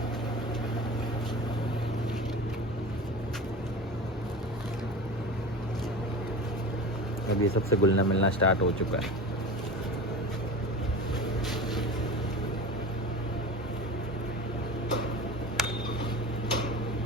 अब ये सबसे घुलना मिलना स्टार्ट हो चुका है।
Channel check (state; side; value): normal; both; correlation 0.32